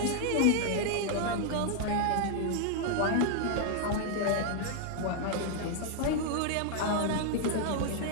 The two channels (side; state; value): both; different; correlation 0.00